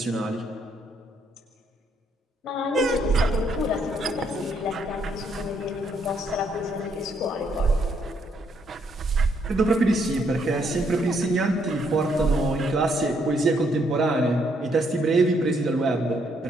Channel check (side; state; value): both; normal; correlation 0.72